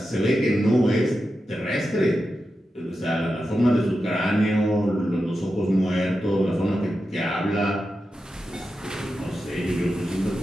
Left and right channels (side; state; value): both; normal; correlation 0.90